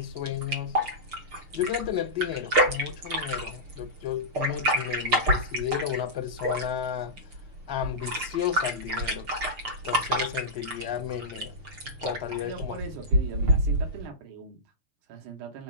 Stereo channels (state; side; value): late; left; 6.7 ms